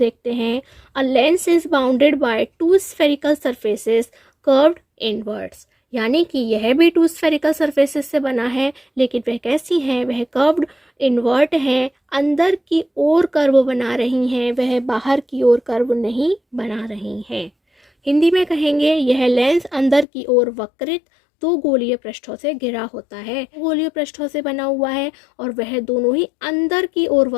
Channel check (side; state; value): right; drops out; at 20.1 s